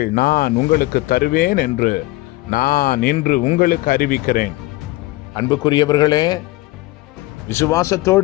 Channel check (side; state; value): right; quieter; 19.3 dB